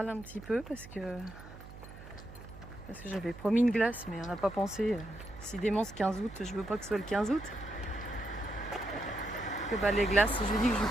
un petit peu parce que j'avais promis une glace, mais on n'a pas pensé. Si démence 15 août, je veux pas que ce soit le 15 août. Que bah, les glaces, je lui dis que je lui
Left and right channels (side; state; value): right; noise; hum, 16 dB below the sound